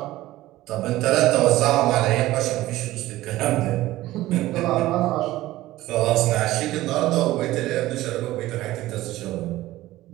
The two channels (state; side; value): quieter; left; 16.4 dB